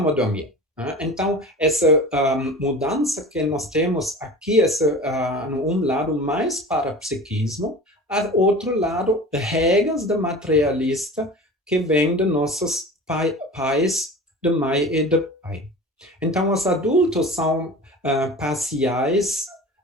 dormir. Né? Então, essa mudança que nós temos aqui, um lado mais para psiquismo, outro lado, regras da materialista que vem de nossos pais, de mãe e de pai. Então, os adultos são parciais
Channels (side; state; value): both; normal; correlation 0.37